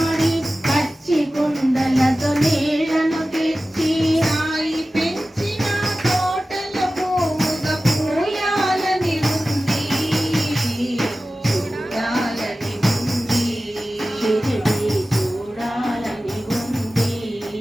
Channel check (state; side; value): normal; both; correlation 0.95